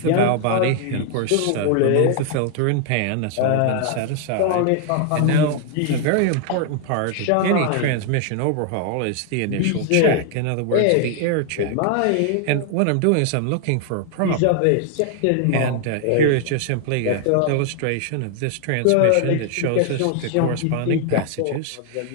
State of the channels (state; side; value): different; both; correlation 0.00